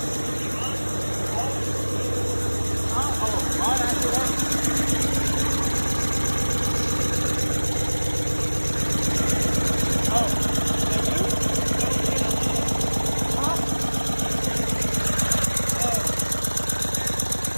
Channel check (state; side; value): inverted; both; correlation -1.00